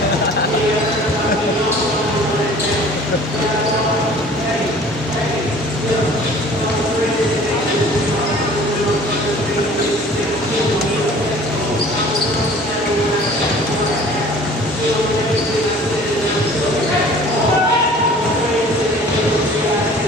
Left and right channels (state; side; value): normal; both; correlation 0.48